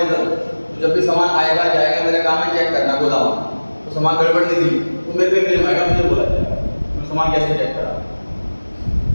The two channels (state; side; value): inverted; both; correlation -1.00